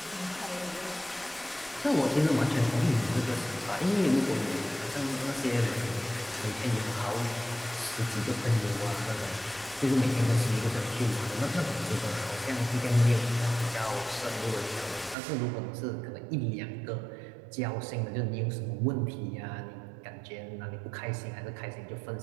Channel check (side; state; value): left; drops out; at 15.2 s